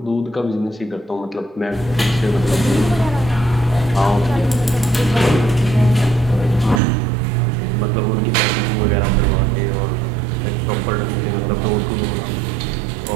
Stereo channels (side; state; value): left; drops out; at 6.8 s